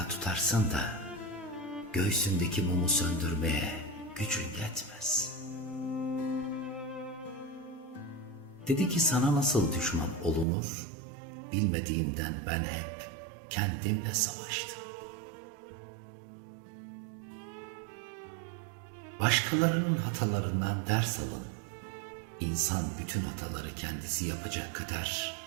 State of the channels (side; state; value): left; drops out; at 10.5 s